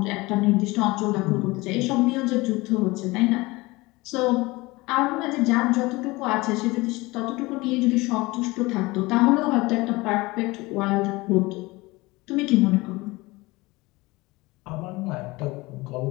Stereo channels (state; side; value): quieter; right; 22.1 dB